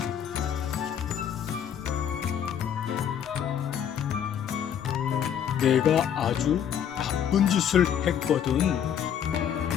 내가 아주 나쁜 짓을 했거든.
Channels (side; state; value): right; quieter; 8.9 dB